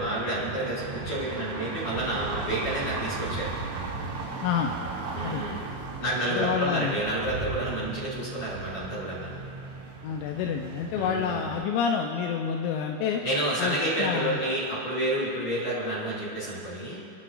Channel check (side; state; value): right; late; 21 ms